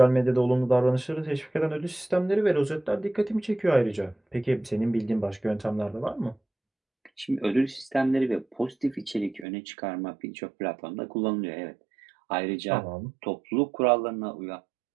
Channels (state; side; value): drops out; left; at 9.5 s